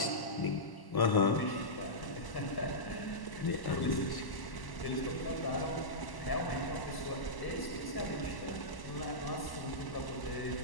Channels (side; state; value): right; late; 1.1 ms